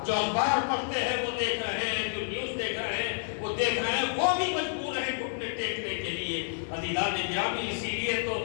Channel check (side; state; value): right; silent; digital silence